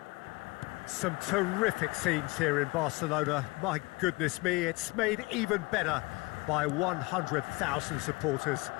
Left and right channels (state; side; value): quieter; right; 25.1 dB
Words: Some terrific scenes here in Barcelona. My goodness me, it's made even better by 100,000 supporters